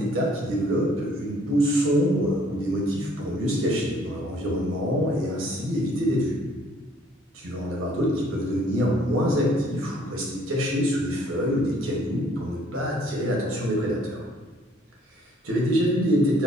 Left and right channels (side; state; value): both; normal; correlation 0.60